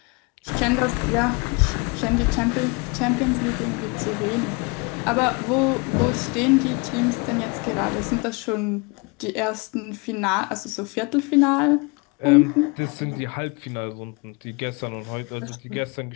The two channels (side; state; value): right; quieter; 29.7 dB